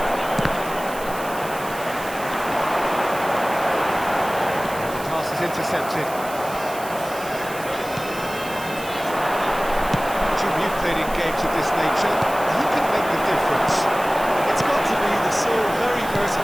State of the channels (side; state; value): right; noise; hiss, 14 dB below the sound